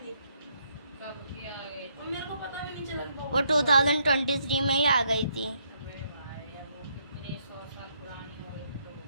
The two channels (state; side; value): inverted; both; correlation -0.72